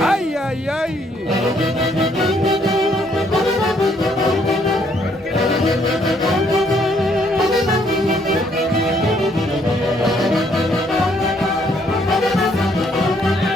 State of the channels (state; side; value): normal; both; correlation 0.68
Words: ¡Ay, ay, ay!